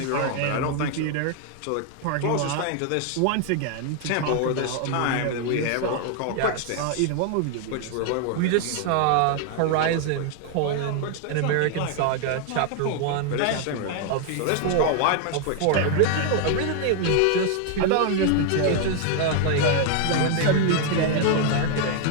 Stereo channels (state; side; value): different; both; correlation 0.00